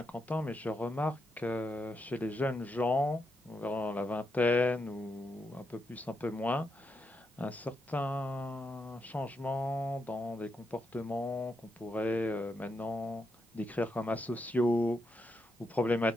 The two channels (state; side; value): normal; both; correlation 0.83